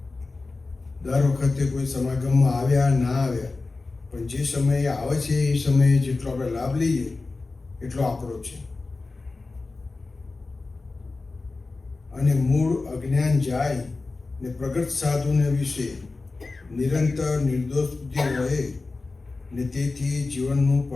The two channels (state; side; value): quieter; right; 3.7 dB